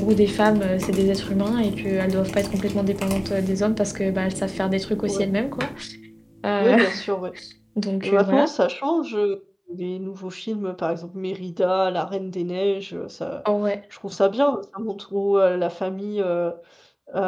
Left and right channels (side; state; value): both; identical; correlation 1.00